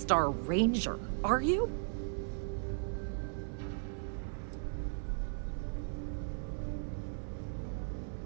Ranger, are you?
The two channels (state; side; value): silent; left; 53 dB below the other